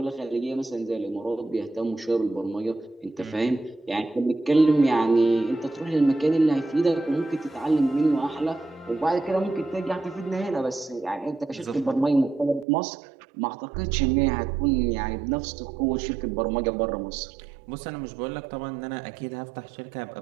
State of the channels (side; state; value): left; drops out; at 12.7 s